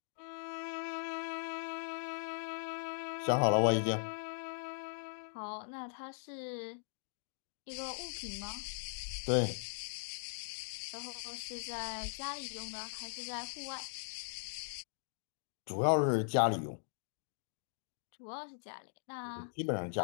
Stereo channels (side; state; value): right; silent; digital silence